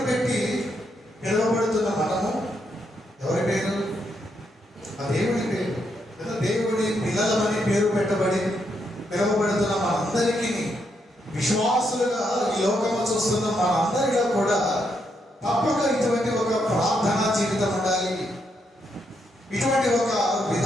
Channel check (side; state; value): both; normal; correlation 0.79